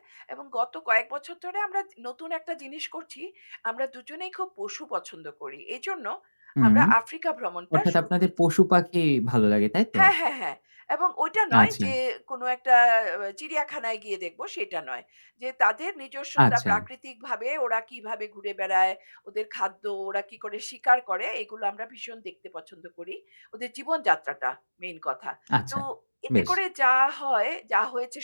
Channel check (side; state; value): both; inverted; correlation -1.00